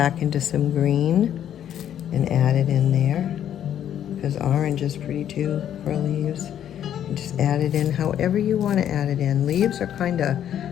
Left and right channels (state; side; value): quieter; right; 10.2 dB